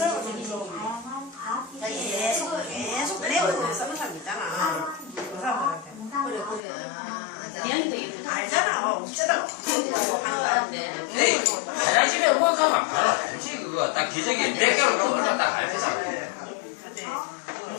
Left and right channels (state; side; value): drops out; right; at 6.6 s